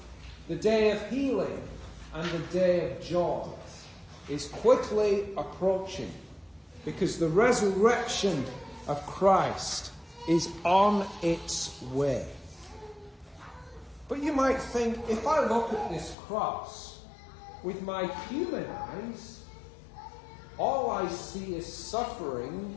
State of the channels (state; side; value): drops out; right; at 16.2 s